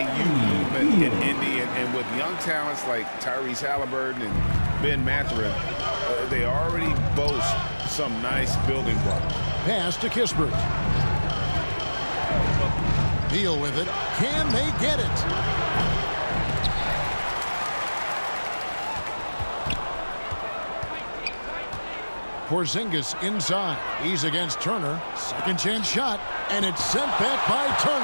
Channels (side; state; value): both; inverted; correlation -1.00